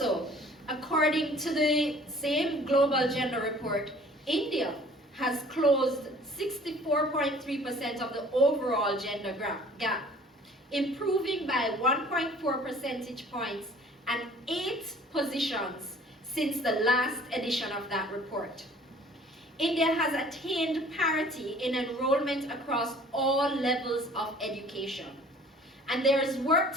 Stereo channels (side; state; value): both; normal; correlation 0.51